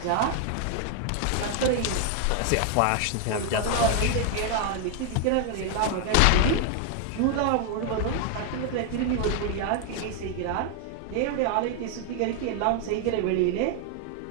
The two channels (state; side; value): different; both; correlation 0.00